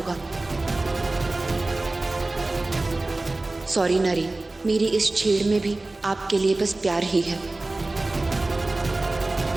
सॉरी नरेन, मेरी इस छेड़ में भी आपके लिए बस प्यार ही है।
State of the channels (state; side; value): quieter; left; 3.0 dB